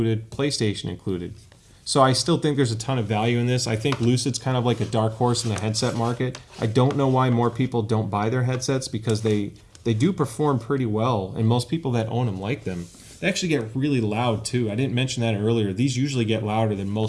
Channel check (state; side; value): identical; both; correlation 1.00